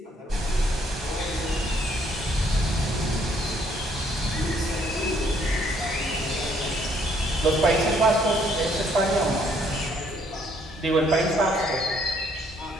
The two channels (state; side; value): normal; both; correlation 0.66